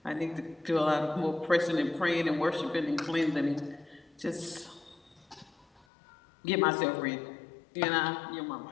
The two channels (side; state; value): right; drops out; at 5.9 s